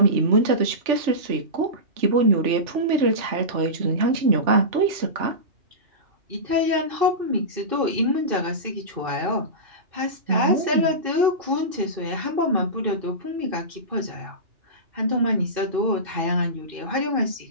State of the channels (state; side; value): late; left; 3.4 ms